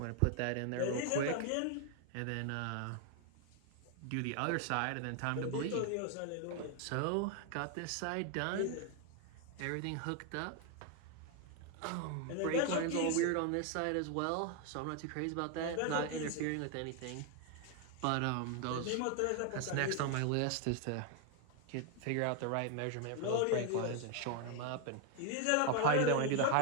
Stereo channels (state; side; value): different; both; correlation 0.01